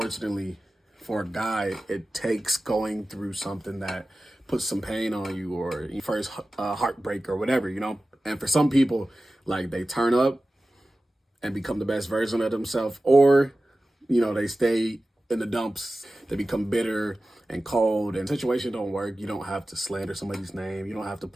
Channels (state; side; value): normal; both; correlation 0.95